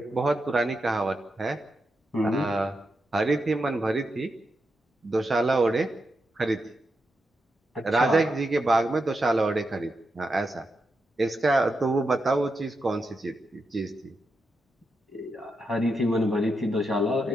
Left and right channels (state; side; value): normal; both; correlation 0.86